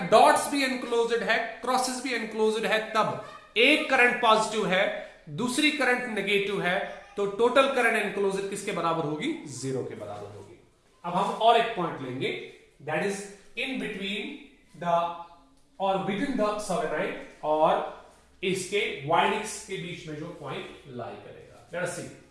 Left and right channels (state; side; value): identical; both; correlation 1.00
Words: डॉट्स भी एनक्लोज्ड है, क्रॉसेस भी एनक्लोज्ड है, तब एक करंट पॉजिटिव है, दूसरी करंट नेगेटिव है, तो टोटल करंट एनक्लोज्ड किसके बराबर होगी? 0 के बराबर होगी। अब हम और एक पॉइंट लेंगे, that is in between the और बिटवीन द सोलेनॉइड और इसके वाइंडिंग्स के बीच में जो पॉइंट लाई करेगा। लेट्स सी